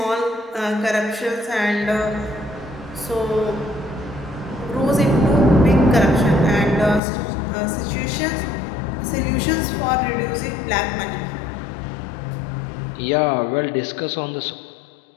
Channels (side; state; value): right; drops out; at 7.0 s